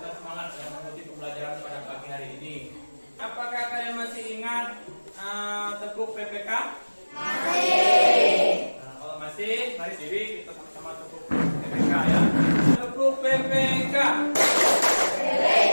semangat ya mengikuti pembelajaran pada pagi hari ini. Apakah kalian masih ingat tepuk PPK? Masih. Nah, kalau masih, mari diri kita sama-sama tepuk PPK ya. Tepuk PPK.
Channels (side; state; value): both; inverted; correlation -1.00